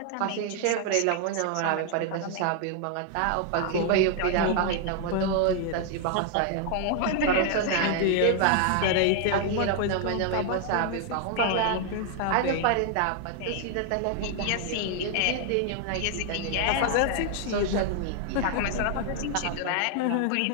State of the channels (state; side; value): different; both; correlation 0.00